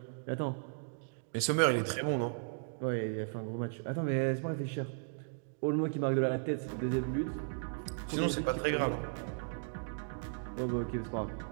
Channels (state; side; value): silent; left; digital silence